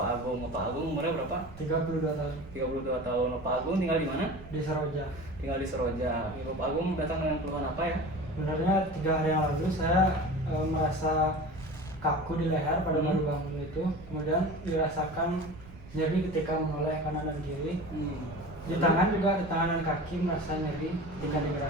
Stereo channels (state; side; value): noise; right; rumble, 17 dB below the sound